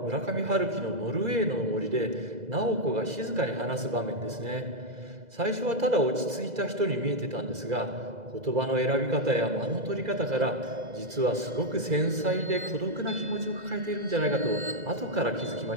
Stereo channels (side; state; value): left; late; 2.0 ms